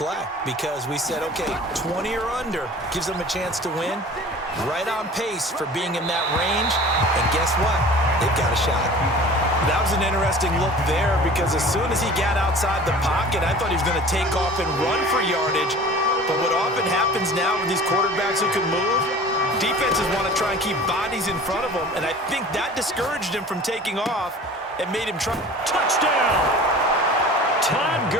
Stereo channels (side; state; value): both; normal; correlation 0.42